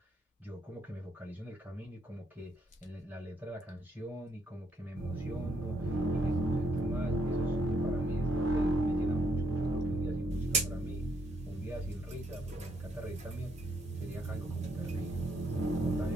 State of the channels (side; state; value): both; normal; correlation 0.73